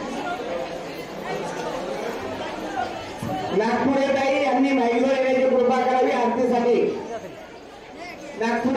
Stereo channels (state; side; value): identical; both; correlation 1.00